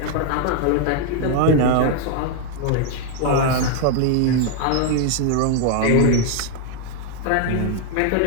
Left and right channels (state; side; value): different; both; correlation 0.01